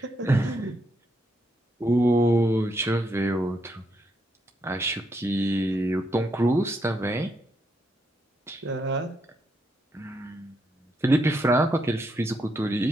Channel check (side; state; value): both; normal; correlation 0.78